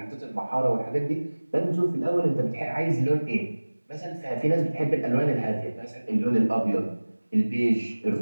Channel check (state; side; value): inverted; both; correlation -1.00